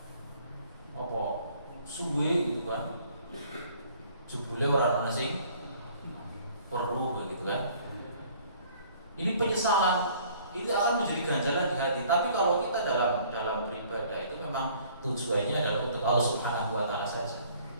apa suwe gitu kan. Jebule ora ana sing perlu gitu kan. Ini penyesalan, ini akan menjadi ganjalan di hati. Tapi kalau kita dalam beribadah itu memang tujuannya adalah untuk Allah Subhanahu wa taala saja.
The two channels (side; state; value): both; inverted; correlation -0.56